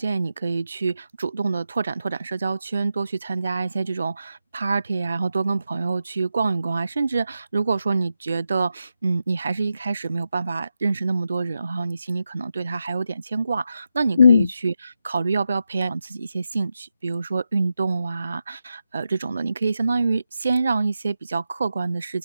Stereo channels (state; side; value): inverted; both; correlation -0.88